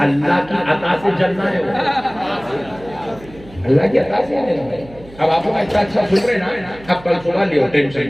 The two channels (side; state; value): right; noise; hum, 20 dB below the sound